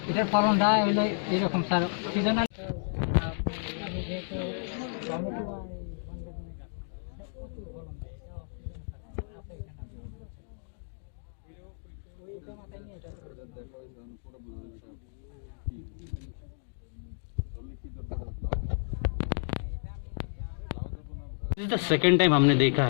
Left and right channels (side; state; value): right; silent; digital silence